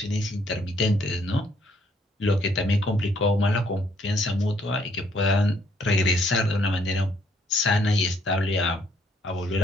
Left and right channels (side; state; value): both; normal; correlation 0.67